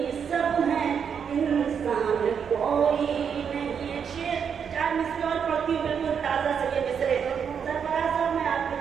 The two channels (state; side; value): quieter; left; 7.2 dB